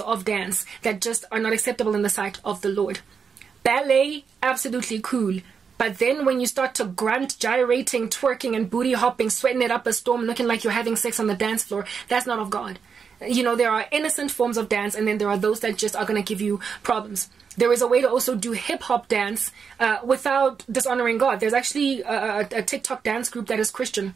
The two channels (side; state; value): left; quieter; 6.2 dB